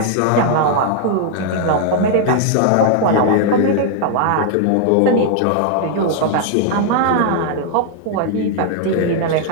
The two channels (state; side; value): different; both; correlation 0.00